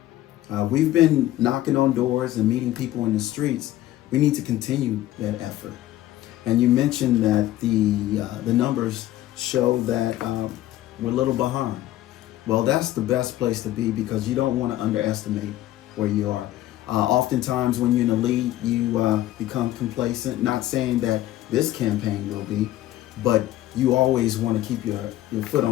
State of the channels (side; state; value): right; quieter; 14.5 dB